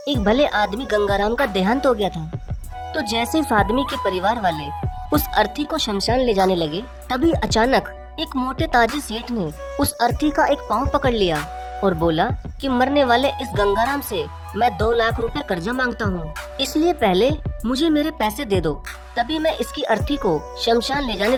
भले आदमी गंगाराम का देहांत हो गया था। तो जैसे इस आदमी के परिवार वाले उस अर्थी को शमशान ले जाने लगे, तभी अचानक एक मोटे ताजी सेठ ने उस अर्थी का एक पांव पकड़ लिया और बोला कि मरने वाले इस गंगाराम से मैं 2 लाख रुपए कर्जा मांगता हूँ, इसलिए पहले मुझे मेरे पैसे दे दो, तभी मैं इसकी अर्थी को शमशान ले जाने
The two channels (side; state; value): both; identical; correlation 1.00